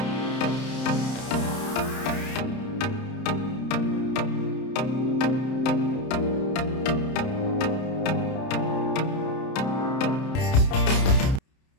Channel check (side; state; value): right; late; 31 ms